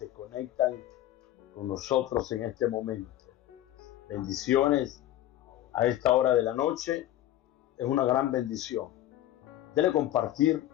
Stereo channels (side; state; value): right; quieter; 13.3 dB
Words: conectan con nosotros en este momento. Bendiciones a esta hora de la noche. Es una gran bendición. Dele compartir,